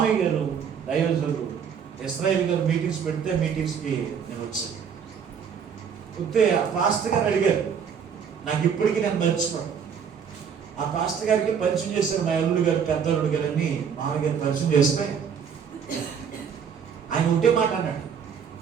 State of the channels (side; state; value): left; quieter; 7.2 dB